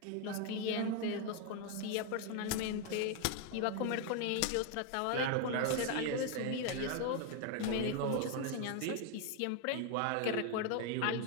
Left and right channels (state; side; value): different; both; correlation 0.01